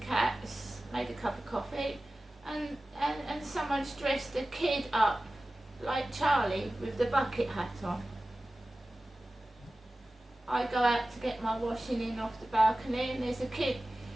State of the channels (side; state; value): both; normal; correlation 0.96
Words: made a cup of coffee, and someone's dressed a kid up like Charlie with the bucket hat on. I go out to get my washing in off the balcony and there's a kid